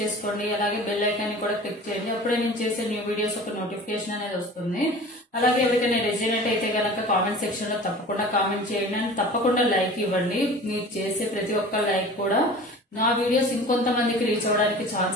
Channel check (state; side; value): normal; both; correlation 0.40